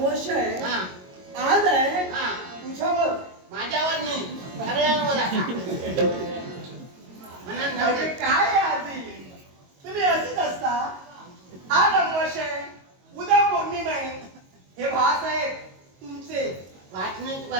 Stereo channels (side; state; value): left; late; 22 ms